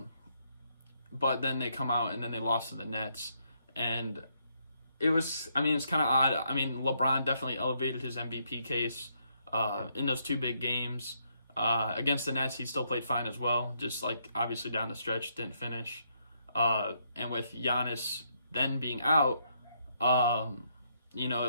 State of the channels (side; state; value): both; inverted; correlation -0.74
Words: then they come out and then they lost to the Nets. And it's kind of odd. I mean, LeBron definitely elevated his MVP case in those two big games. Against the Nets, he still played fine as well. Just, like, obviously down the stretch, didn't finish. And with Giannis then being out,